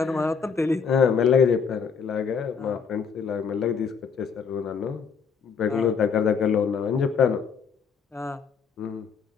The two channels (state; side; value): quieter; right; 6.2 dB